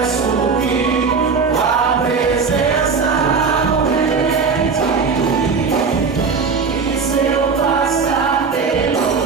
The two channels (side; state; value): left; quieter; 5.1 dB